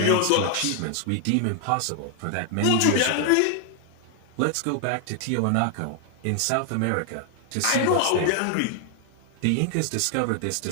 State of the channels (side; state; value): both; different; correlation 0.00